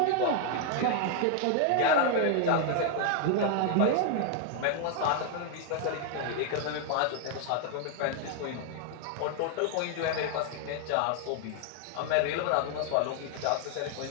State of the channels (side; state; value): both; different; correlation 0.00